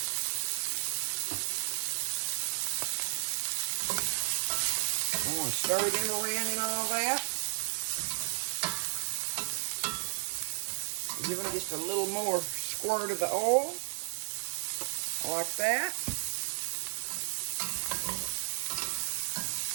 I'm going to stir them around and all that. Give them just a little more squirt of the oil, like that.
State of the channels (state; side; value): silent; left; 56 dB below the other